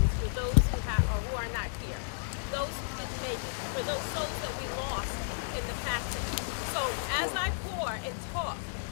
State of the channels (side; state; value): right; silent; digital silence